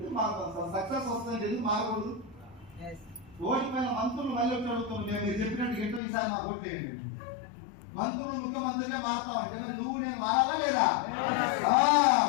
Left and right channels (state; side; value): drops out; right; at 6.0 s